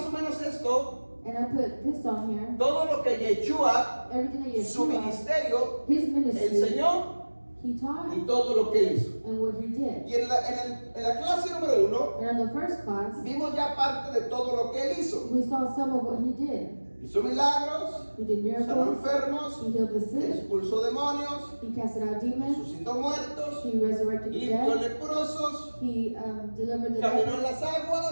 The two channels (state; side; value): inverted; both; correlation -1.00